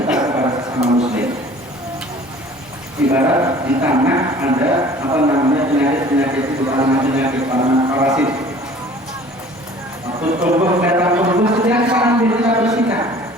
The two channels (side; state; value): both; normal; correlation 0.48